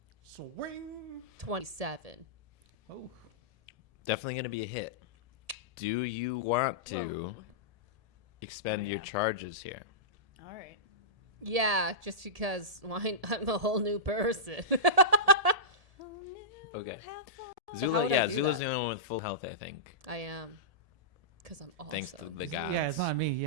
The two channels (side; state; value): left; late; 1.7 ms